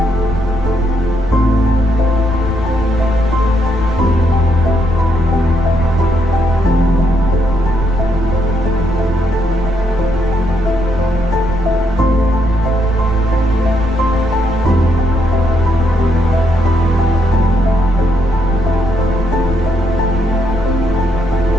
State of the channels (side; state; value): both; normal; correlation 0.76